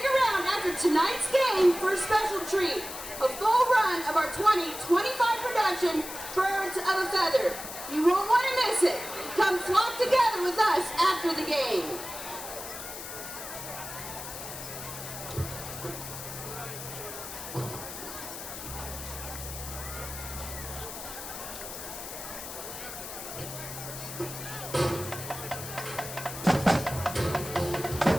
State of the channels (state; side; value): noise; left; hiss, 9 dB below the sound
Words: around after tonight's game for a special treat, a full run of our 2025 production, Birds of a Feather. You won't want to miss it. Come flock together with us after the game.